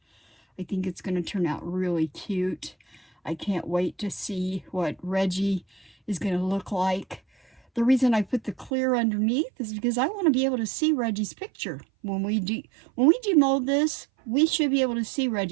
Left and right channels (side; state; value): left; drops out; at 8.7 s